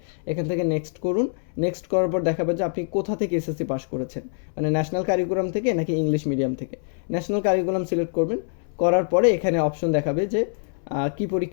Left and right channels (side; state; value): right; silent; 62 dB below the other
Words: এখান থেকে নেক্সট করুন। নেক্সট করার পর দেখাবে যে আপনি কোথা থেকে এসএসসি পাস করেছেন, মানে ন্যাশনাল কারিকুলাম থেকে নাকি ইংলিশ মিডিয়াম থেকে। ন্যাশনাল কারিকুলাম সিলেক্ট করবেন। করার পরে এখানে অপশন দেখাবে যে কি